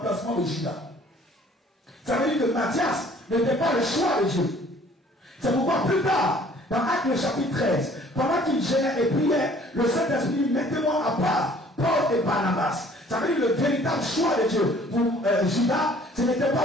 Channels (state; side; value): normal; both; correlation 0.55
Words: de Judas. Ça veut dire que Matthias n'était pas le choix de Dieu. C'est pourquoi plus tard, dans Actes le chapitre 13, pendant qu'ils gênaient et priaient, le Saint-Esprit dit, mettez-moi à part Paul et Barnabas. Ça veut dire le véritable choix de Dieu. Pour Judas, ce n'était